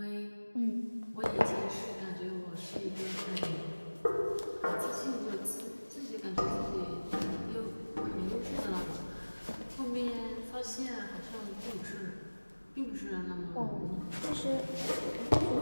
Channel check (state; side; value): inverted; both; correlation -1.00